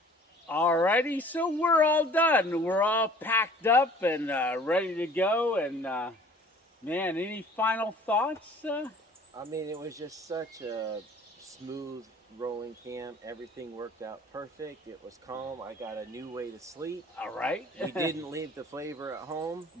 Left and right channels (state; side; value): normal; both; correlation 0.50